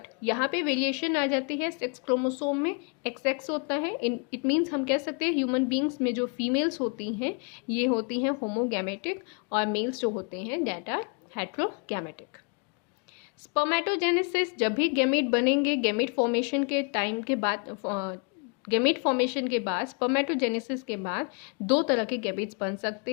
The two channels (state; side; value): quieter; right; 36.6 dB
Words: यहाँ पे वेरिएशन आ जाती है, सेक्स क्रोमोसोम में XX होता है। इट मीन्स हम कह सकते हैं ह्यूमन बींग्स में जो फीमेल्स होती हैं ये होती हैं होमोगैमेटिक, और मेल्स जो होते हैं दैट आर हेट्रोगैमेटिक। स्पर्मेटोजेनेसिस, जब भी गैमेट बनेंगे, गैमेट फॉर्मेशन के टाइम के बाद, गैमेट फॉर्मेशन के बाद, स्पर्मेटोजेनेसिस के बाद दो तरह के गैमेट्स बन सकते